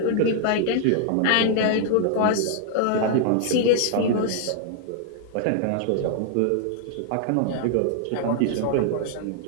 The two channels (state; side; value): different; both; correlation 0.00